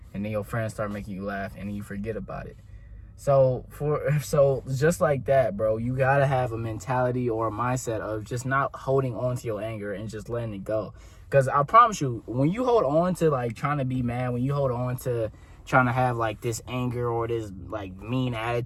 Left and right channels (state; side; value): identical; both; correlation 1.00